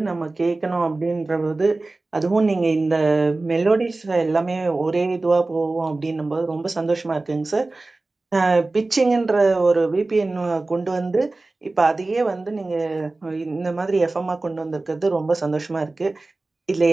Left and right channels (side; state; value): left; quieter; 3.2 dB